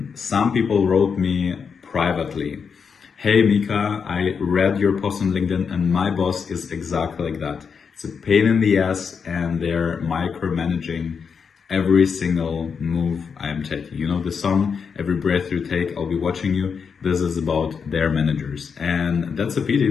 some people wrote me privately, "Hey Mika, I read your post on LinkedIn and my boss is exactly like that. It's a pain in the ass and they're micromanaging every single move I am taking. You know the song, Every Breath You Take, I'll Be Watching You. This is about their managers." And that's a pity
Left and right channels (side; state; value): right; quieter; 6.1 dB